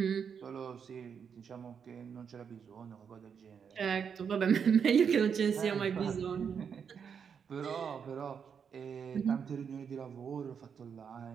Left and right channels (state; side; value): quieter; left; 6.9 dB